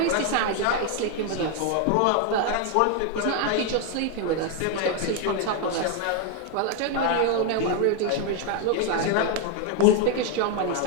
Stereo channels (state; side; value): different; both; correlation 0.01